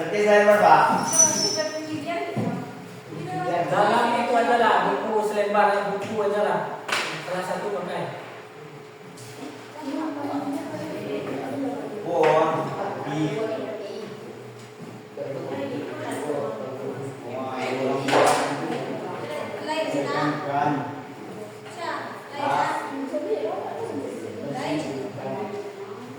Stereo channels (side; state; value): both; identical; correlation 1.00